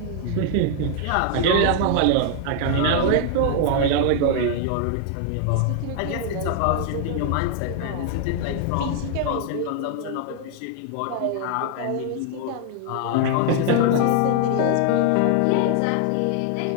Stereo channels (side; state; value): both; different; correlation 0.00